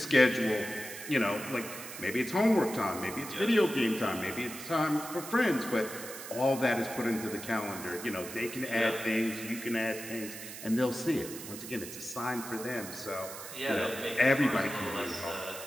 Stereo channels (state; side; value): noise; right; hiss, 11 dB below the sound